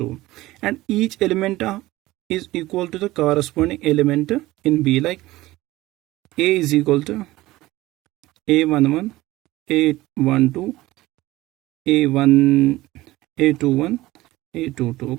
And each element is equal to the corresponding element in B. Like A is equal to A11, A12, A1, A21, A22.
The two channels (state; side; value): quieter; left; 17.9 dB